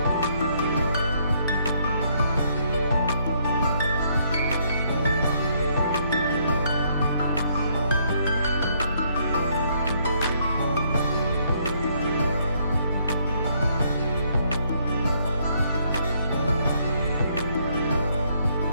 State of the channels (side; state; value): both; inverted; correlation -0.69